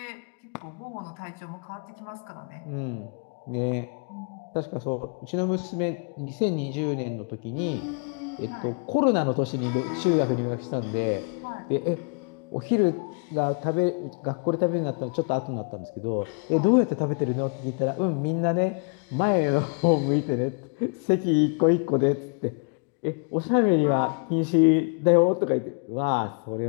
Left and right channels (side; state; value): right; quieter; 37.8 dB